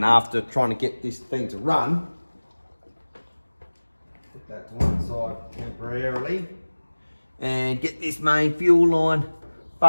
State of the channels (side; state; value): both; inverted; correlation -1.00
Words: after trying to get this thing to run. Put that to one side temporarily and get this main fuel line